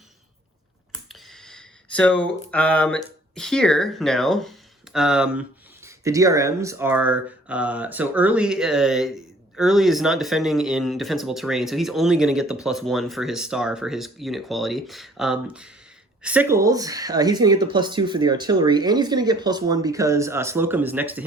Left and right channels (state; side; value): normal; both; correlation 0.56